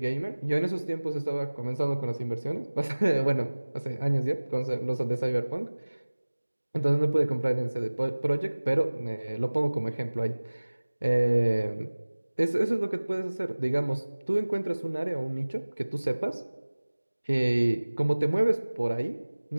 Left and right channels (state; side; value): inverted; both; correlation -1.00